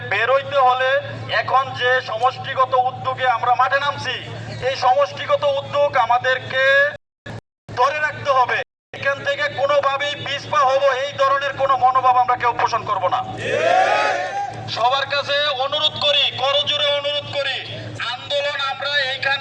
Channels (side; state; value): both; identical; correlation 1.00